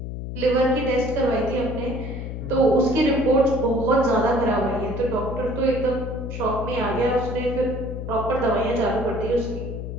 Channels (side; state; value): left; noise; hum, 7 dB below the sound